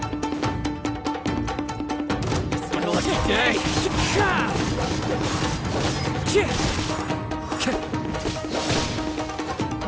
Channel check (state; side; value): identical; both; correlation 1.00